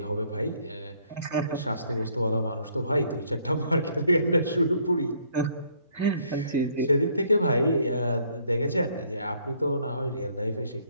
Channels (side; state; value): both; inverted; correlation -0.66